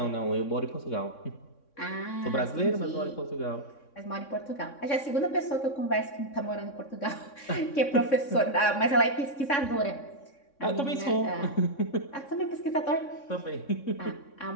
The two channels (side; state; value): right; late; 3.6 ms